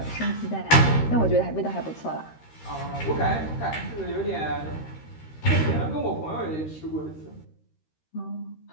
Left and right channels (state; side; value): late; right; 13 ms